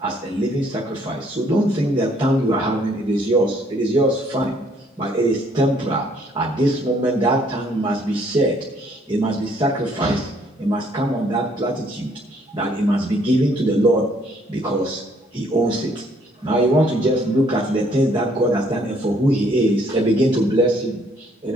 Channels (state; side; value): normal; both; correlation 0.65